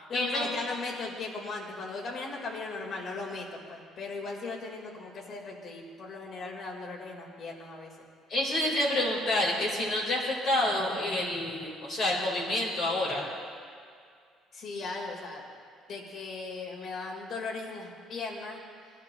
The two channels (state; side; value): normal; both; correlation 0.64